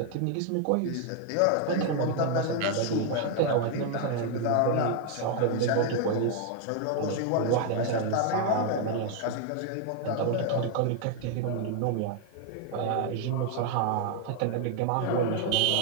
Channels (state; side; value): different; both; correlation 0.01